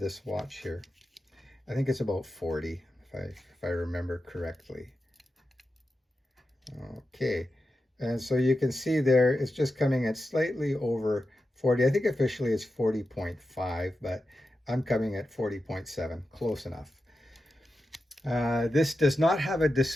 watch here. I think it's about 40, if I remember correctly. Okay, and so you can see there, it's just coming at slightly over 40. I think officially it's 40.5, but I'm coming at 40.7, close enough. This does not have a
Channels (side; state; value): both; normal; correlation 0.90